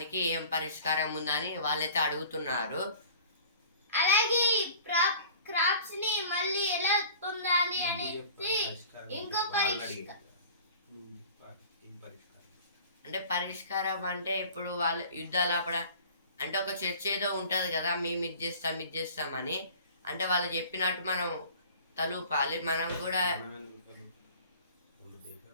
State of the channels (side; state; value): both; inverted; correlation -0.45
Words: ఏం పరిష్కారం ఉందని వాళ్ళైతే అడుగుతున్నారు. అలాగే క్రాప్స్ ని మళ్ళీ ఎలా పొందాలి అనేది ఇంకో అంటే పరిష్కారం అంటే ఇప్పుడు వాళ్ళు యుద్ధాలు ఆపడ అంటే ఒక చర్చ ఏదో ఉంటది కదా, మేము ఇది చేస్తామని, అంటే వాళ్ళు చెప్పినట్టు మనం తలూపాలి, మనం కూడా